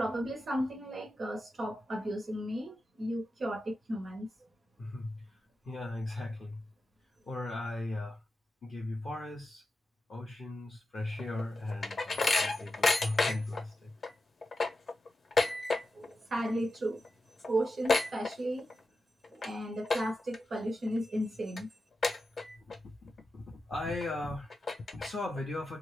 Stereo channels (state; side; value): normal; both; correlation 0.90